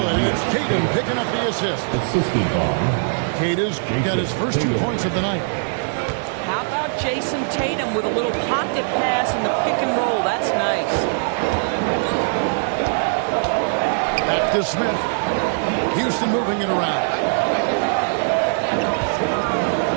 and it's Tatum picking up the assist. Assisted by Tatum's got his first 2 points of the night. How about Jason Tatum with a little pocket pass in the pick and roll? That's nice. Back to Smith. Houston moving it around.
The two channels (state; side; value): silent; left; digital silence